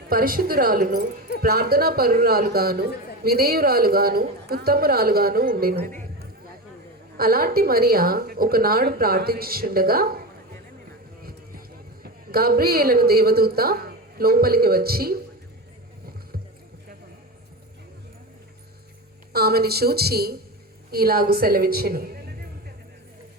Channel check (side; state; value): both; normal; correlation 0.22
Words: పరిశుద్ధురాలును, ప్రార్థనా పరురాలుగాను, విధేయురాలుగాను, ఉత్తమురాలుగాను ఉండెను. అలాంటి మరియ ఒకనాడు ప్రార్థించుచుండగా గాబ్రియేలను దేవదూత లోపలికి వచ్చి ఆమెను చూచి ఇలాగు సెలవిచ్చెను: